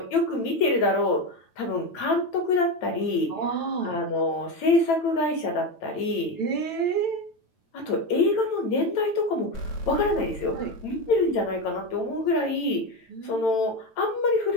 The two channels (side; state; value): right; late; 9.0 ms